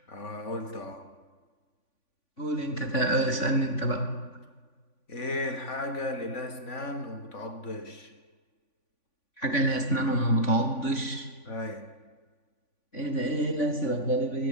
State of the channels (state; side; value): late; right; 3.5 ms